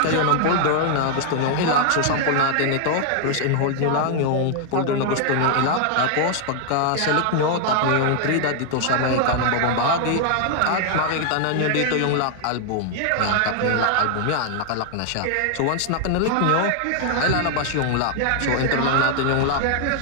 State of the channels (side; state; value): both; different; correlation 0.00